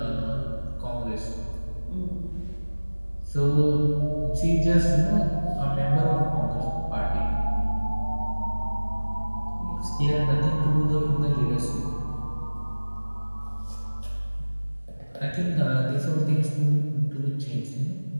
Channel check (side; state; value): both; inverted; correlation -1.00